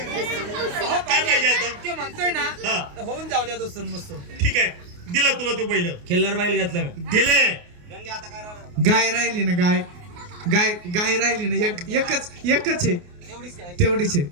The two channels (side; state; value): left; late; 28 ms